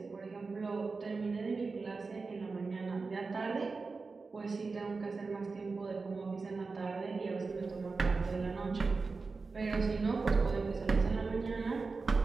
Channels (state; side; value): quieter; left; 4.2 dB